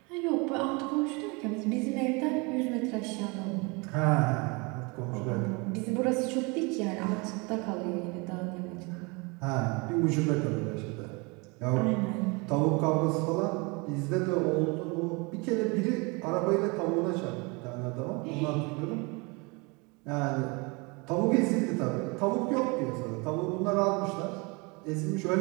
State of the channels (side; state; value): left; quieter; 28.7 dB